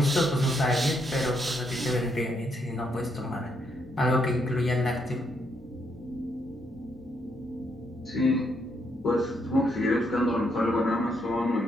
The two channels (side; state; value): both; normal; correlation 0.76